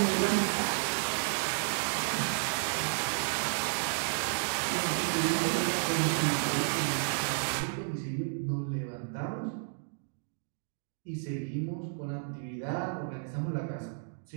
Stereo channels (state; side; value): silent; left; digital silence